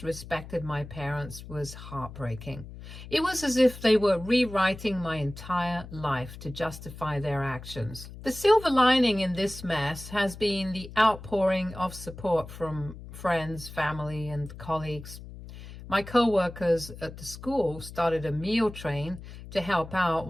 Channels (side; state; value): left; noise; hum, 14 dB below the sound